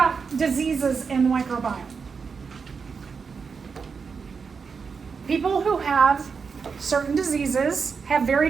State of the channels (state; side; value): quieter; left; 5.5 dB